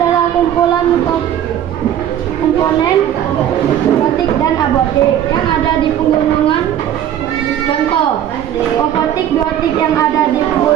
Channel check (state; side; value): quieter; left; 10.6 dB